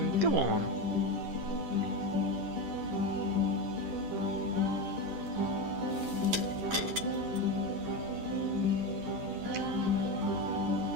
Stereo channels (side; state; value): left; late; 10 ms